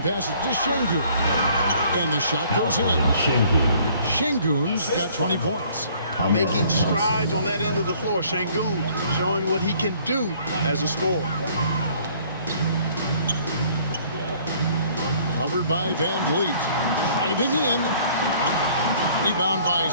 passes to Şengün. And the shot goes in. Şengün's got 20 points. Making strides on that end of the floor. Şengün showing what he can do as a scorer. Covered by Van Vliet. Driving in. Rebound by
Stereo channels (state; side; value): inverted; both; correlation -0.58